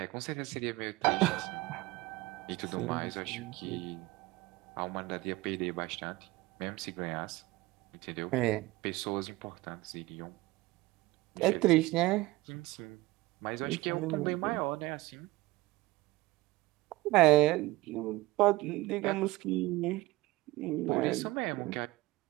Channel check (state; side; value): quieter; left; 20.0 dB